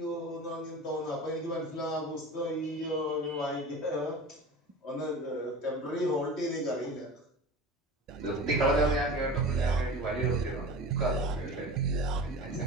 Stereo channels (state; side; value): normal; both; correlation 0.34